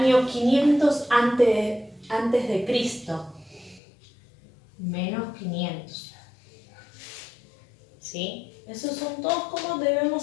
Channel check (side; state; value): right; drops out; at 3.8 s